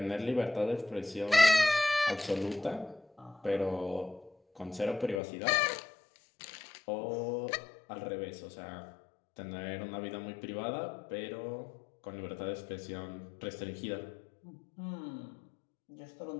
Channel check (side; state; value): right; drops out; at 5.2 s